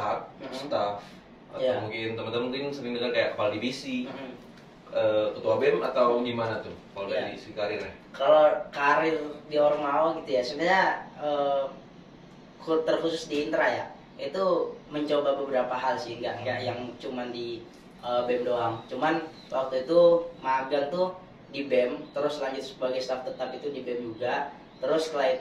staff, atau mungkin teman-teman mungkin sering dengar kayak kepala divisi, ketua BEM, atau gimana tuh kalau dari segi karirnya? Kalau karir di Ormawa gitu ya, sebenarnya terkhusus di Intra ya, itu mencoba beberapa hal sih, nggak yang cuman di BEM doang. Cuman waktu itu magang tuh di BEM, terus lanjut sebagai staf tetap itu di BEM juga. Terus setelah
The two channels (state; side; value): identical; both; correlation 1.00